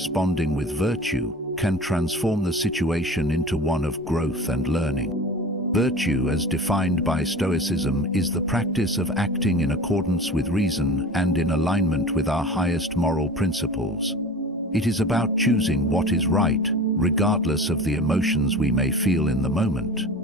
with virtue can transform the situation into one of growth and learning. Virtue, as defined by Stoicism, is the practice of acting in accordance with reason and in alignment with our highest moral principles. It is about choosing what is right, regardless of the emotions we may feel in the moment.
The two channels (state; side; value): normal; both; correlation 0.36